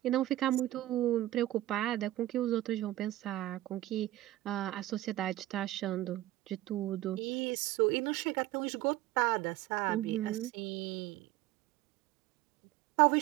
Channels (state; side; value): quieter; left; 15.5 dB